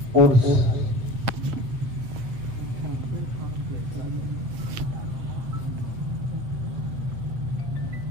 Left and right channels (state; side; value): late; left; 8.1 ms